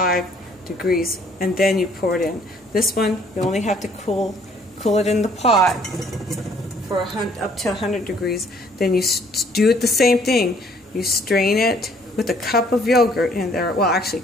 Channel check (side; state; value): both; normal; correlation 0.60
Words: degrees, and then you pour it in. This one, you only have to cool it in the pot for up to 100 degrees. Then you do it the same thing. You strain it with a cup of yogurt in there. Well, actually,